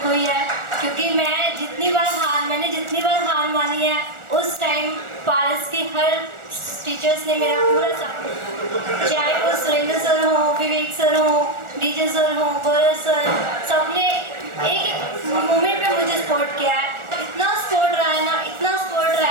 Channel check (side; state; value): left; late; 1.4 ms